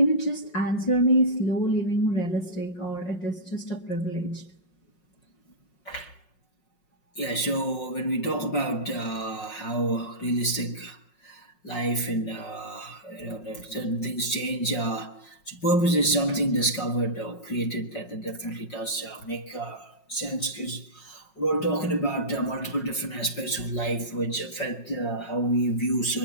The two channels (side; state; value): right; late; 5.5 ms